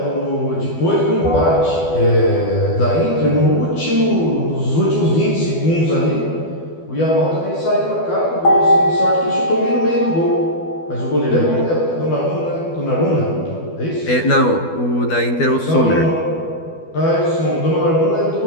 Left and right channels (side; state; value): right; late; 12 ms